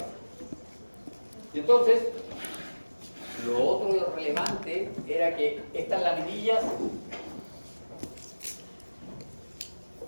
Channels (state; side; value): inverted; both; correlation -1.00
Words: Y entonces, lo otro relevante era que estas laminillas